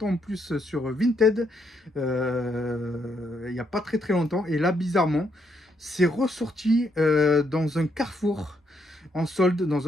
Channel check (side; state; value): both; normal; correlation 0.76